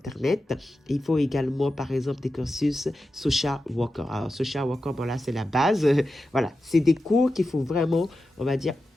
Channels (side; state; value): both; normal; correlation 0.91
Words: Il faut également, par exemple, des cursus social worker. Alors, social worker, bon là, c'est la base. Voilà, c'est des cours qu'il faut vraiment, on va dire,